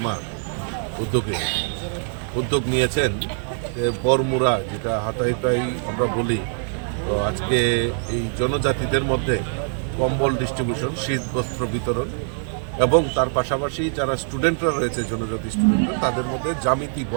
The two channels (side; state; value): left; silent; digital silence